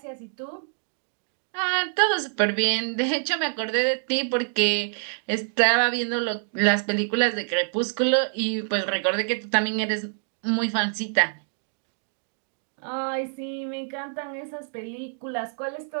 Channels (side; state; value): left; silent; digital silence